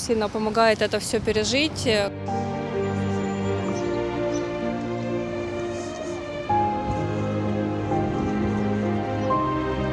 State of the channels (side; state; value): both; identical; correlation 1.00